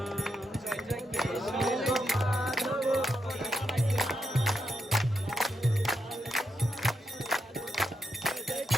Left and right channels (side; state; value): both; normal; correlation 0.84